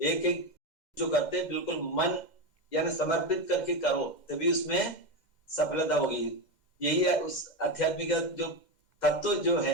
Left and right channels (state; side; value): late; right; 2.1 ms